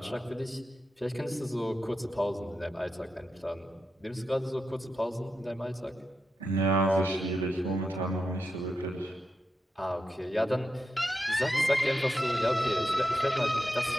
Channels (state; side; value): normal; both; correlation 0.87